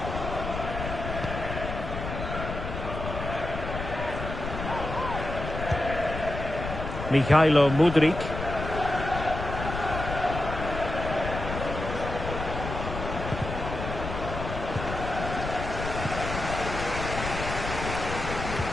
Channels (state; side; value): noise; left; rumble, 6 dB below the sound